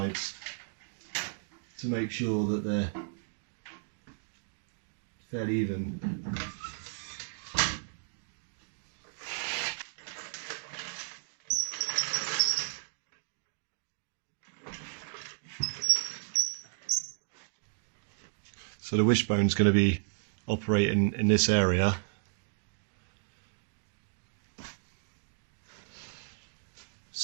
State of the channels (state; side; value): silent; left; digital silence